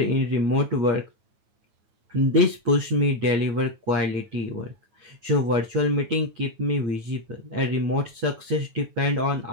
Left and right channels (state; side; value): late; left; 9.2 ms